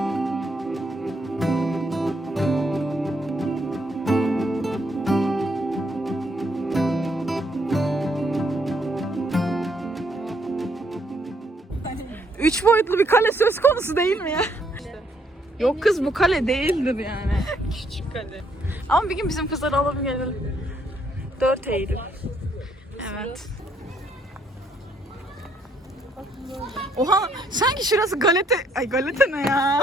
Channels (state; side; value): normal; both; correlation 0.71